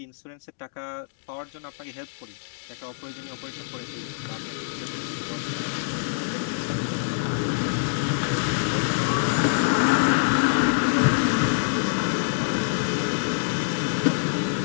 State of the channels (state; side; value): silent; right; digital silence